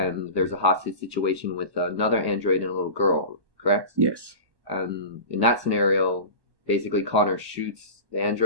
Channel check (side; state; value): left; late; 1.2 ms